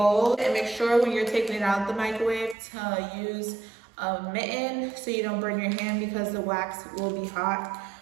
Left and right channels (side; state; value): left; drops out; at 2.6 s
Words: and make sure when you're taking it out the microwave to use a mitten so you don't burn your hand because the wax will be hot.